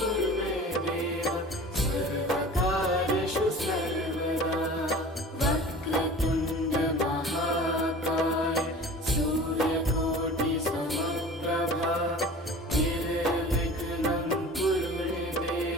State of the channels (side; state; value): both; normal; correlation 0.40